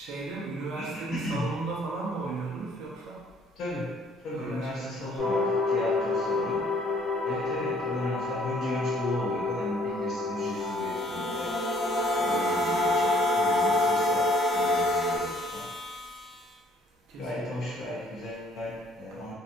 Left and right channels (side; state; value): both; normal; correlation 0.61